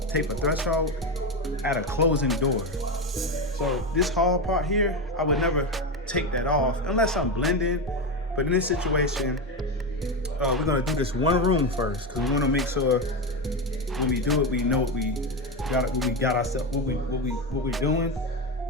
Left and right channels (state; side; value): normal; both; correlation 0.15